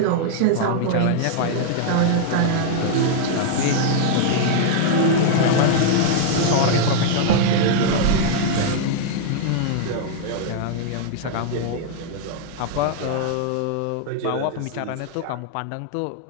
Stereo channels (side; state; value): both; different; correlation -0.01